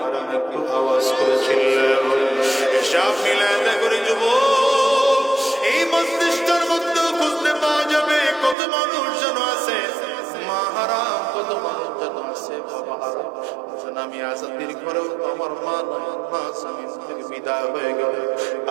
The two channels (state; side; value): drops out; left; at 8.6 s